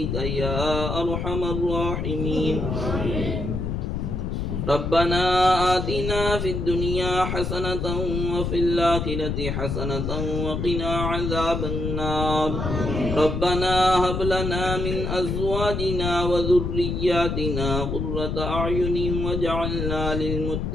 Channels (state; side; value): noise; left; rumble, 2 dB below the sound